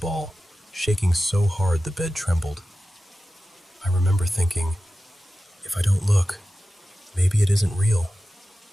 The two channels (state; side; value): normal; both; correlation 0.94